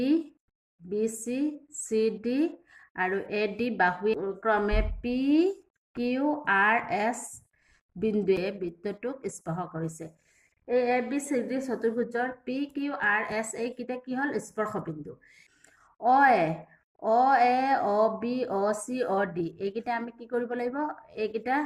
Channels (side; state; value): both; identical; correlation 1.00